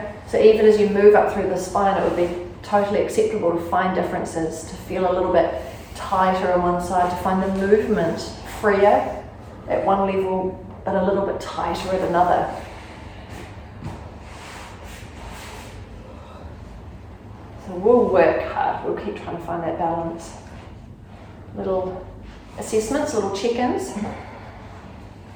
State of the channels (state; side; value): identical; both; correlation 1.00